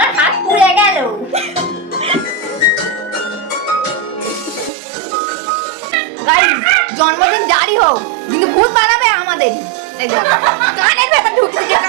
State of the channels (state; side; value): drops out; left; at 4.7 s